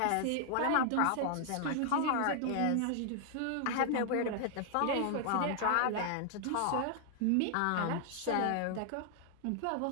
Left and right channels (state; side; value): different; both; correlation 0.00